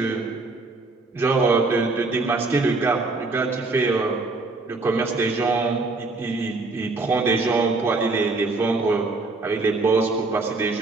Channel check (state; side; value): quieter; left; 3.5 dB